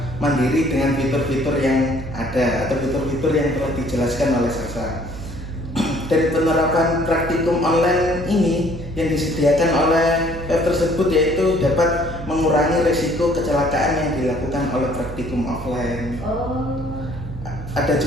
mandiri dengan fitur-fitur yang ada atau fitur-fitur yang telah dijelaskan oleh Sasa. Dan penerapan praktikum online ini yang disediakan oleh web tersebut yaitu dapat mengurangi risiko kecelakaan yang dilakukan oleh praktikum offline. Oh. Ada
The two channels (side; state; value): right; noise; hum, 10 dB below the sound